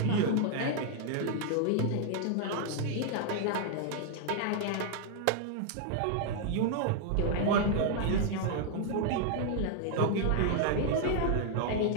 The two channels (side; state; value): both; different; correlation 0.00